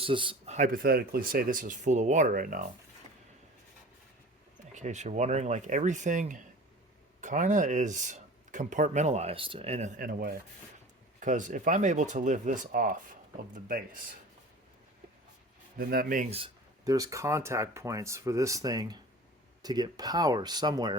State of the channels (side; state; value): both; normal; correlation 0.40